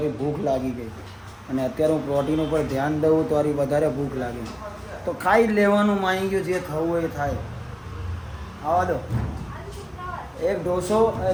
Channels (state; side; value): identical; both; correlation 1.00